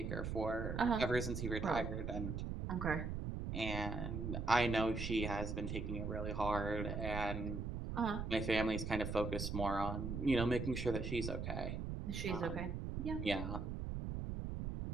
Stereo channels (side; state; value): right; noise; rumble, 3 dB below the sound